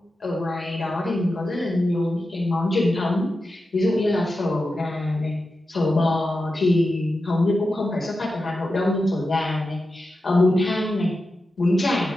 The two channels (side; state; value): both; normal; correlation 0.91